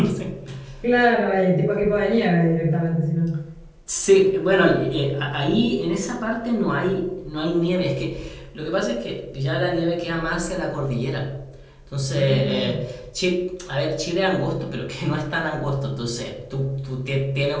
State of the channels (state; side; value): identical; both; correlation 1.00